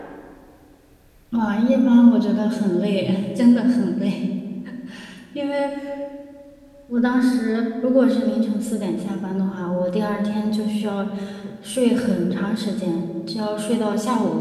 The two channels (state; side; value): identical; both; correlation 1.00